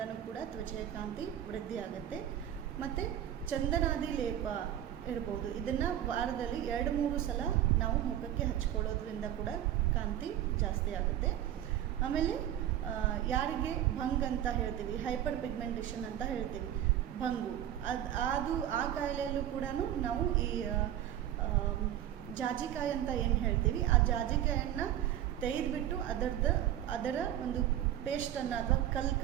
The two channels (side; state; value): left; quieter; 11.6 dB